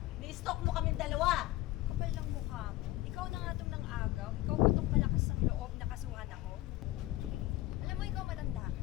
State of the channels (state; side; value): quieter; right; 17.0 dB